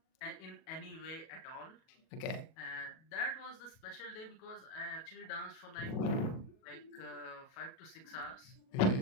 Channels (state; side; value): late; right; 37 ms